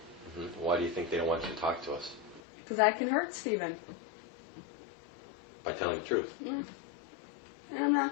Mm-hmm. Why do you think they don't want you to talk to us? Because I can hurt Stephen. By telling the truth. Yeah. And I'm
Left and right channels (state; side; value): drops out; right; at 2.4 s